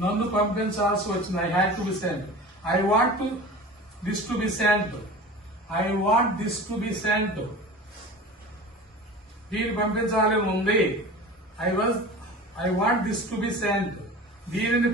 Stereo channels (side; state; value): both; normal; correlation 0.36